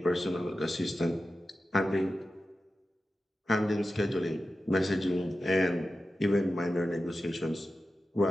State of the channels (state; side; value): normal; both; correlation 0.92